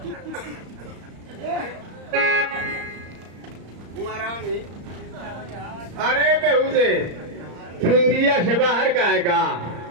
महारानी। अरे बेहुदे, तू इंडिया से बाहर का है का?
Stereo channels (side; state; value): left; late; 34 ms